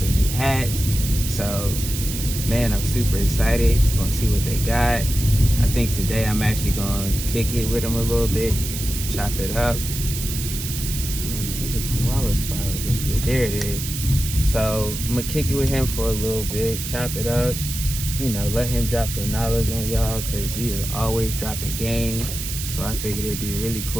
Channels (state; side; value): noise; right; hiss, 6 dB below the sound